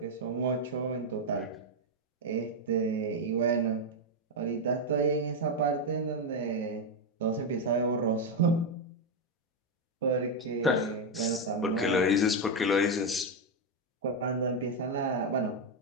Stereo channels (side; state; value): both; normal; correlation 0.04